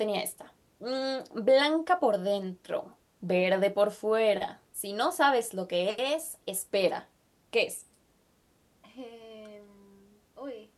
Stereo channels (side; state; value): both; identical; correlation 1.00